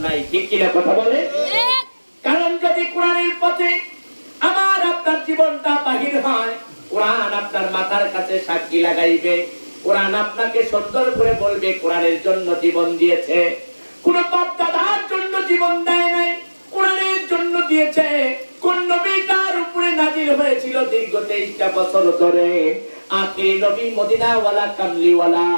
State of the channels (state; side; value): inverted; both; correlation -1.00